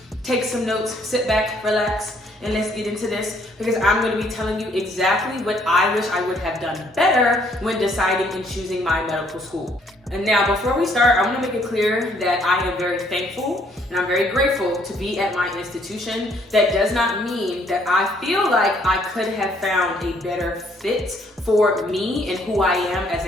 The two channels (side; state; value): both; normal; correlation 0.66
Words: take some notes, sit back, relax, and let's get into this, because I'm going to be telling you exactly what I wish I would have done better when deciding and choosing my medical school. And now, before we start, I want to make it clear that I am very thankful and I'm very grateful to be at my institution. That does not mean that I feel like I could have found a better fit for me and who I am as